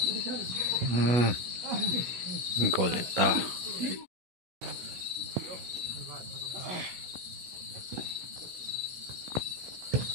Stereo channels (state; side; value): late; left; 16 ms